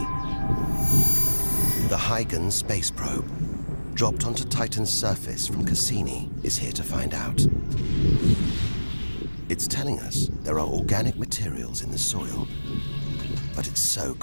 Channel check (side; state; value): both; inverted; correlation -1.00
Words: The Huygens space probe, dropped onto Titan's surface from Cassini, is here to find out. It's telling us there are organic materials in the soil, but it's so